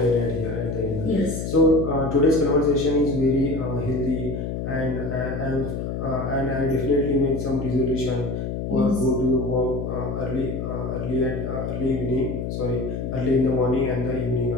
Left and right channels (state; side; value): noise; left; hum, 4 dB below the sound